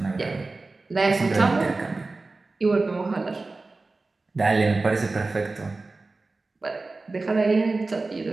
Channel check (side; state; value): left; quieter; 3.5 dB